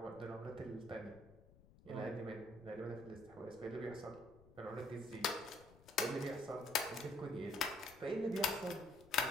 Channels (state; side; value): noise; left; rumble, 23 dB below the sound